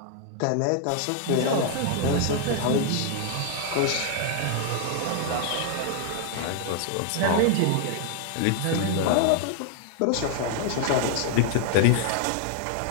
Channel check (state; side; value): different; both; correlation 0.00